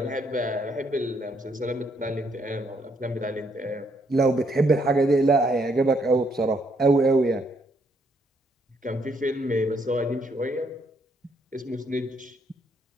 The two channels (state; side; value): normal; both; correlation 0.72